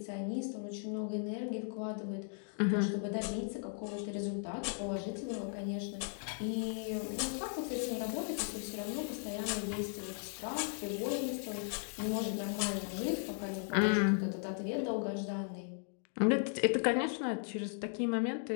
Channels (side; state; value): right; silent; 53 dB below the other